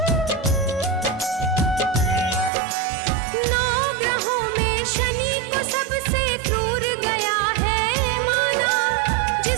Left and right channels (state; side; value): drops out; left; at 2.5 s